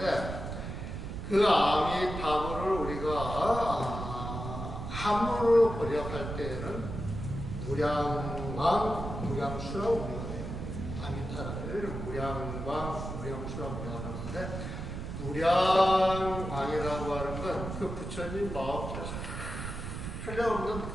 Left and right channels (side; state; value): right; noise; rumble, 6 dB below the sound